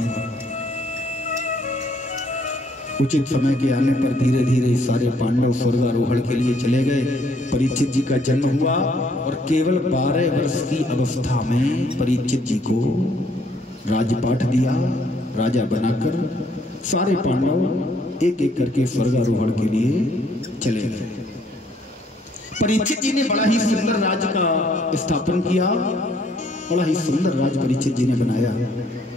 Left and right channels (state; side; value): normal; both; correlation 0.66